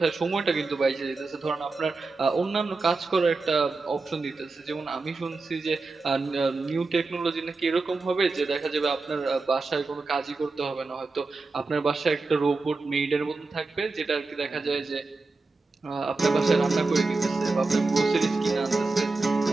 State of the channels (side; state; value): left; quieter; 3.7 dB